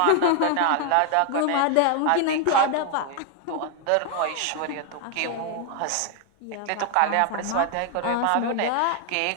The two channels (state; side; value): different; both; correlation 0.00